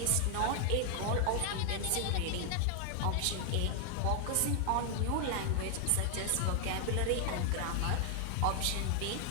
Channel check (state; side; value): different; both; correlation 0.00